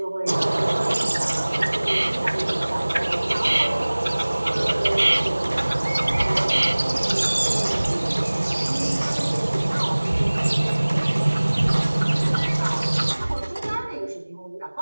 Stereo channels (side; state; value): both; inverted; correlation -1.00